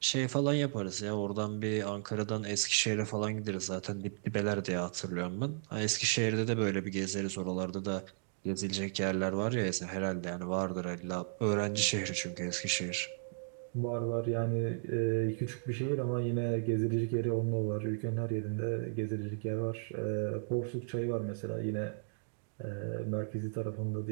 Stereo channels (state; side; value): silent; left; digital silence